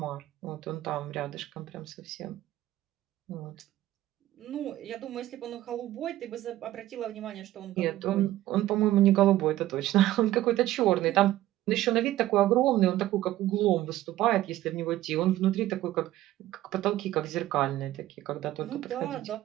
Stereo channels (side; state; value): left; quieter; 14.7 dB